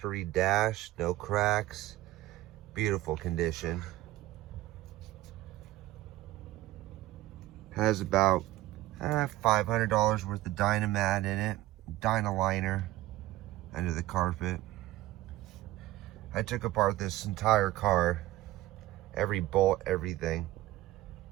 dash, no cracks, beautiful condition. Has about $500 worth of Dynamat in it, Dynaliner under the carpet. I took apart this entire car, every bolt, everything.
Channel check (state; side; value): quieter; left; 16.3 dB